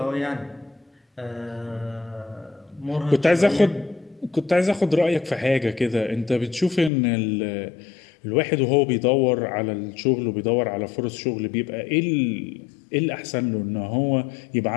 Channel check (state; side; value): drops out; right; at 6.9 s